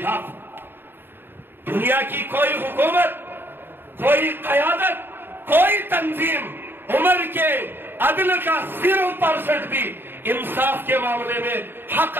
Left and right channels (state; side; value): late; left; 0.099 ms